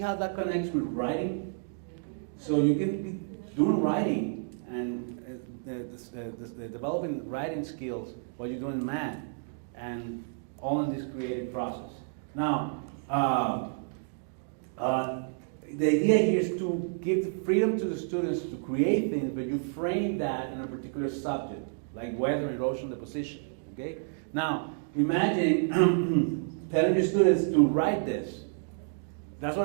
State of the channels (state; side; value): silent; left; digital silence